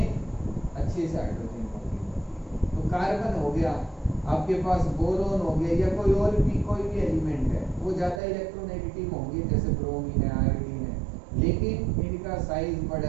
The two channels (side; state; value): left; drops out; at 8.2 s